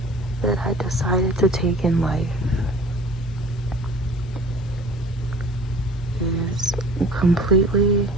that I decided to take in life is completely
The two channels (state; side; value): normal; both; correlation 0.46